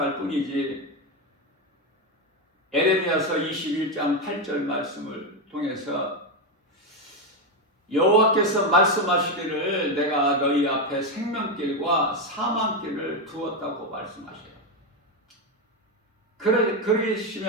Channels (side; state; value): both; normal; correlation 0.09